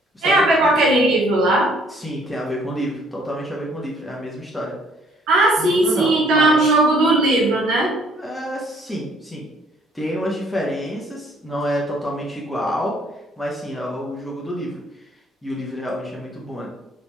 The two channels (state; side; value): normal; both; correlation 0.61